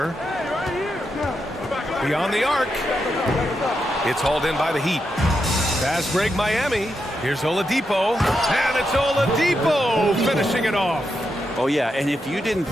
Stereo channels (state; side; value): normal; both; correlation 0.85